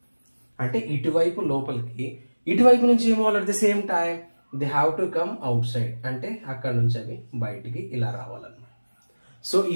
అంటే ఇటువైపు లోపలికి, ఇటువైపు నుంచి ఏమో at the same time they have to come outside, అంటే అక్కడ నుంచి అవి బయటికి ఇలా రావాలన్నమాట. సో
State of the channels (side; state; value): both; inverted; correlation -1.00